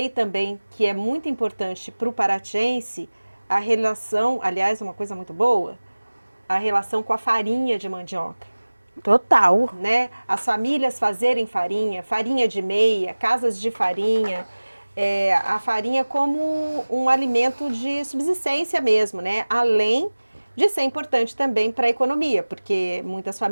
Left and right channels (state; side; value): inverted; both; correlation -1.00